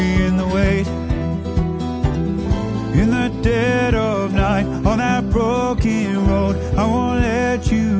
the weight in the dead of night on that broken road. I won't let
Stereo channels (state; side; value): identical; both; correlation 1.00